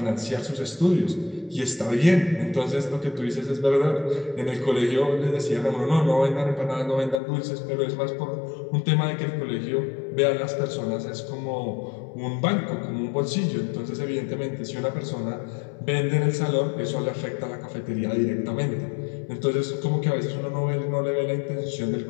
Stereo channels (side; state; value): right; drops out; at 7.2 s